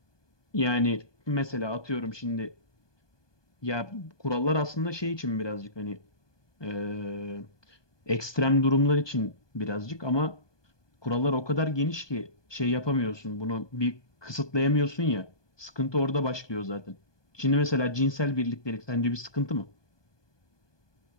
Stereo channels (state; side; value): late; right; 1.2 ms